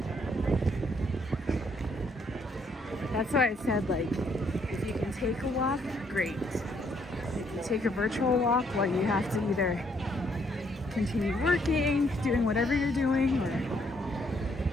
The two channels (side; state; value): both; normal; correlation 0.70